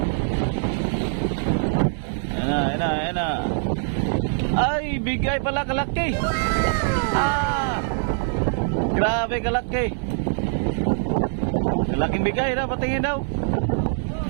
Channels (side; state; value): left; silent; digital silence